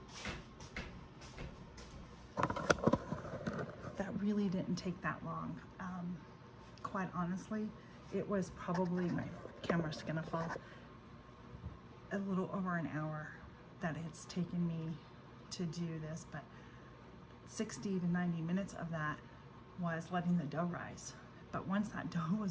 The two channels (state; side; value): identical; both; correlation 1.00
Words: That really didn't take that long. Quite honestly, it was probably, my camera's gonna fall, a little over an hour that it's taken me to do this, but 60 to 90 minutes of that was letting the dough rise. But once that dough